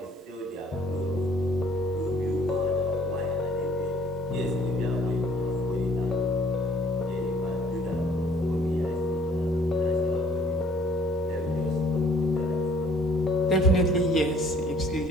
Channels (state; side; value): normal; both; correlation 0.58